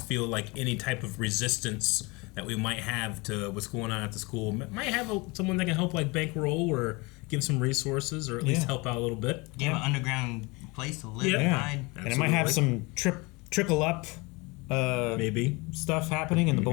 feel like any type of resistance that we might have to what's going on at the school. Might have someone that can help like bankroll or give some resources or at least help out a little bit. Give an underground place to live and hide. And it might have some trickle up maybe stuff happening in the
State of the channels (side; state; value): right; quieter; 26.2 dB